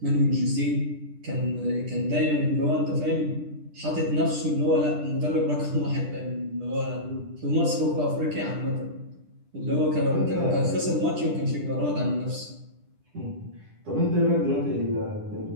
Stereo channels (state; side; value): late; left; 10 ms